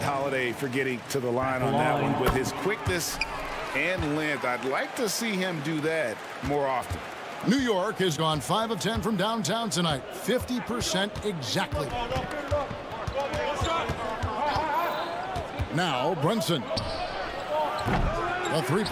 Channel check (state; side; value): identical; both; correlation 1.00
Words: Holiday for getting to the line on that one with his quickness and length. I'd like to see him do that more often. New York has gone 5 of 10 from downtown tonight. 50% exactly. Now, Brunson. A